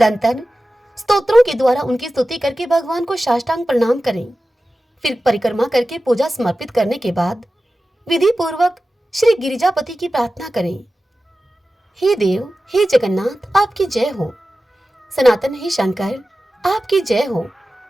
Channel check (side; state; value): both; normal; correlation 0.94